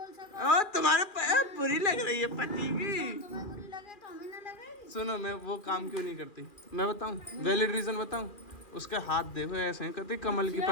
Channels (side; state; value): right; late; 2.4 ms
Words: सको। ओ तुम्हारे बुरी लग रही है पति की। तुम्हें बुरी लगे तो हमें ना लगेगी। सुनो, मैं वो काम क्यों नहीं करती, मैं बताऊं, वैलिड रीजन बताऊं। उसके हाथ देखो ऐसे हैं, कहती कमल की